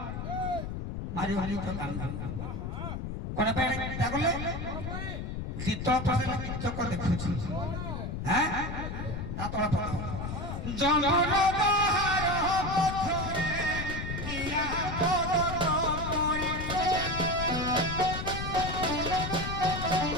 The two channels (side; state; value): left; noise; rumble, 5 dB below the sound